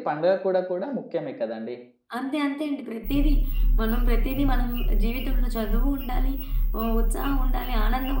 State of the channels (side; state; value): both; identical; correlation 1.00